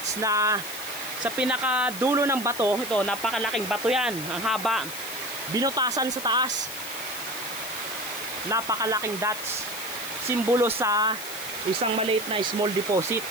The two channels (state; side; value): noise; left; hiss, 10 dB below the sound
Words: na sa pinakadulo ng bato, ito, napakalaking bato yan, ang haba, binutasan sa taas. Napakalaking dots, simbolo sa isang maliit na small deposit.